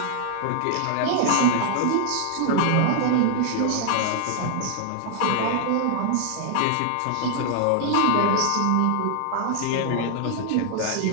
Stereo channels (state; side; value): different; both; correlation 0.00